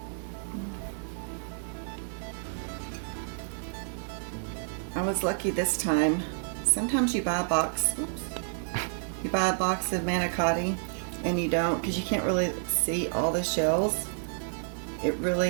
I was lucky this time. Sometimes you buy a box, you buy a box of manicotti and you don't, because you can't really see all the shells. It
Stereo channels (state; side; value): silent; left; 58 dB below the other